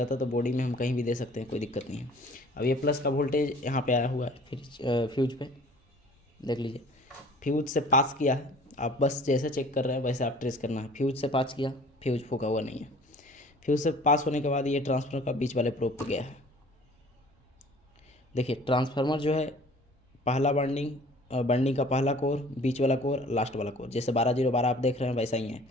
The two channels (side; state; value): both; normal; correlation 0.49